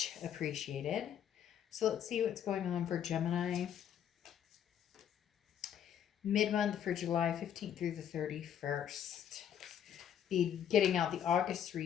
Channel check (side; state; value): right; quieter; 9.4 dB